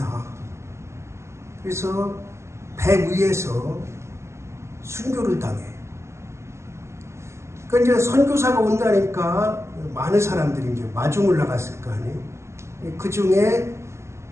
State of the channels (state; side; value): late; left; 0.13 ms